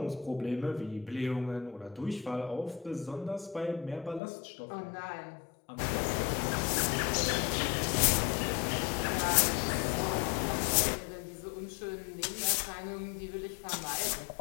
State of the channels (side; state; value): right; drops out; at 4.2 s